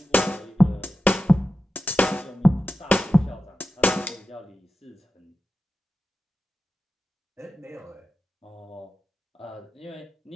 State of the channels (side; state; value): both; normal; correlation 0.91